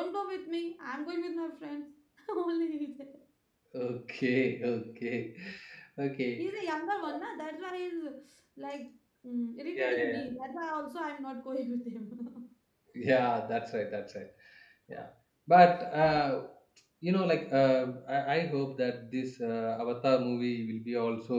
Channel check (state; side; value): identical; both; correlation 1.00